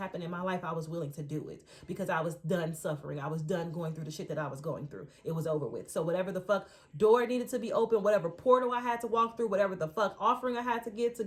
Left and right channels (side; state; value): both; identical; correlation 1.00